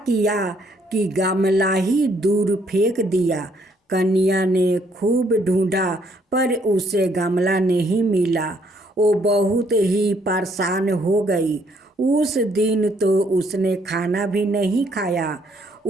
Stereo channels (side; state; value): both; normal; correlation 0.68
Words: कि गमला ही दूर फेंक दिया। कन्या ने खूब ढूंढा पर उसे गमला नहीं मिला। वो बहुत ही परेशान हो गई। उस दिन तो उसने खाना भी नहीं खाया।